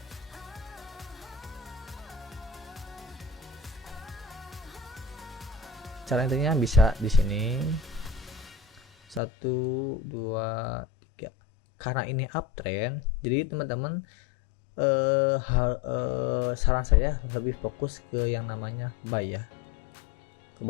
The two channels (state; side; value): drops out; right; at 9.2 s